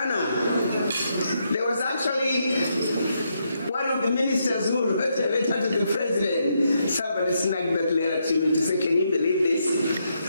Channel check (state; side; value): inverted; both; correlation -0.79